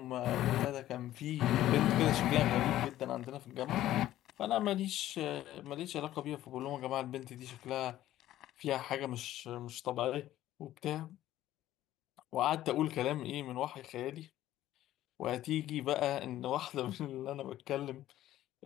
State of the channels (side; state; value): right; quieter; 13.7 dB